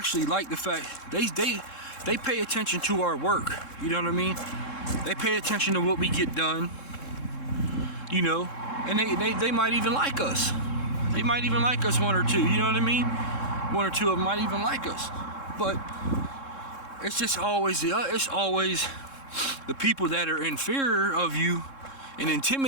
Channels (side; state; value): right; late; 3.7 ms